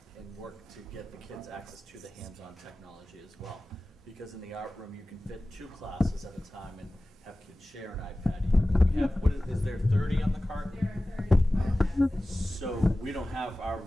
work to get the kids access to the hands-on technology as well. Because in the art room, you can fit 2 classes at a time and have kids share an iPad. We have, is there 30 on the cart? There are 30. So we don't have, our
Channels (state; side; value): normal; both; correlation 0.97